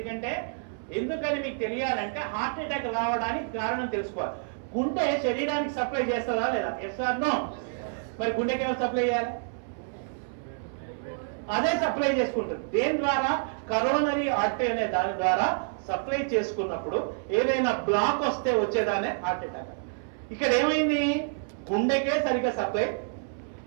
ఎందుకని మీకు తెలియాలంటే హార్ట్ అటాక్ రావడానికి కారణం తెలుసుకోవాలి. గుండె శరీరానికి సప్లై చేస్తుందా లేదా? Yes or no? మరి గుండెకి ఎవరు సప్లై చేయాలి? అదే సప్లై చేసుకుంటుంది. దేని ద్వారా? కరోనరీ ఆర్టరీ అనే దాని ద్వారా సప్లై చేసుకున్నప్పుడు ఏదైనా బ్లాక్ వస్తే వచ్చేదానే హార్ట్ అటాక్. ఇక్కడ ఏమైంది? గుండెకే సరిగ్గా సప్లై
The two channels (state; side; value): silent; left; 59 dB below the other